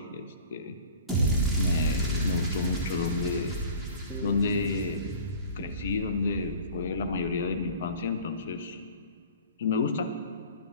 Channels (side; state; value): both; inverted; correlation -0.43